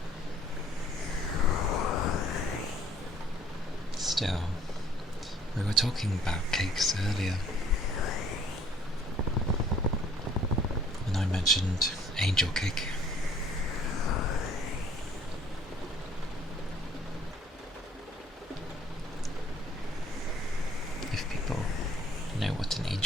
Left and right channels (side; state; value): both; normal; correlation 0.58